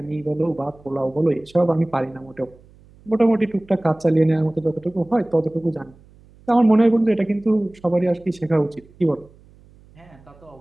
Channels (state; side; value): noise; right; hum, 27 dB below the sound